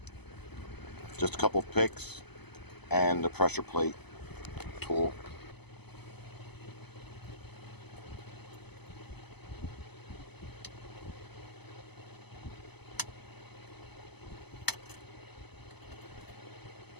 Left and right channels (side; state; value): right; late; 0.99 ms